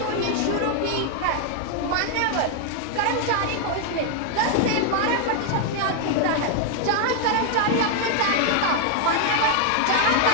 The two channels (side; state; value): both; different; correlation 0.00